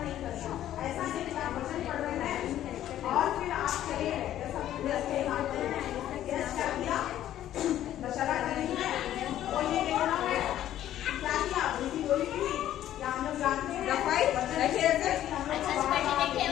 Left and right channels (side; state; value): right; quieter; 12.2 dB